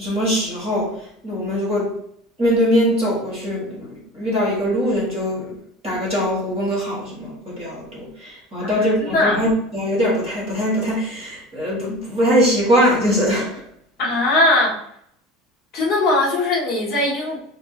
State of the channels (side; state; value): both; normal; correlation 0.35